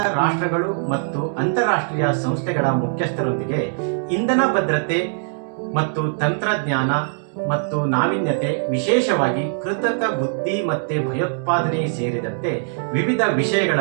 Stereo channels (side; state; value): left; silent; digital silence